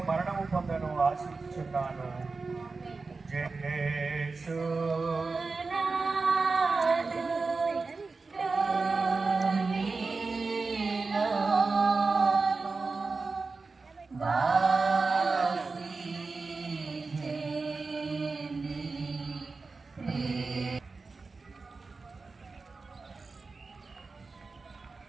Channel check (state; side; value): quieter; left; 4.1 dB